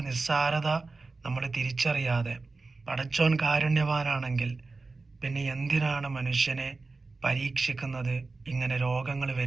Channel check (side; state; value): left; quieter; 3.8 dB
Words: നിസ്സാരത നമ്മൾ തിരിച്ചറിയാതെ, പടച്ചോൻ കാരുണ്യവാനാണെങ്കിൽ പിന്നെ എന്തിനാണ് മനുഷ്യനെ പരീക്ഷിക്കുന്നത്, ഇങ്ങനെ രോഗങ്ങൾ